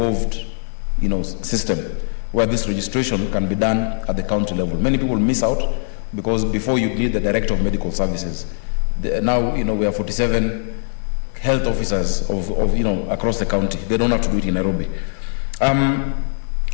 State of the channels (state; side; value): silent; right; digital silence